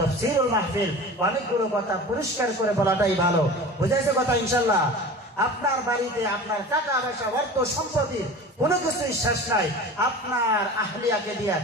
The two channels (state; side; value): normal; both; correlation 0.36